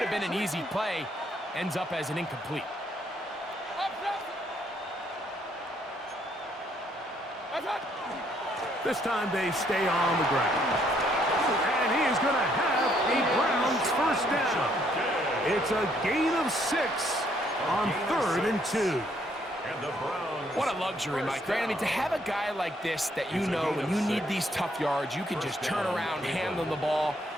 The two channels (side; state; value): both; normal; correlation 0.69